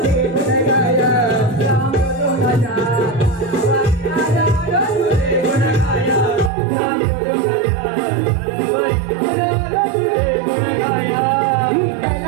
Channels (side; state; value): left; drops out; at 6.5 s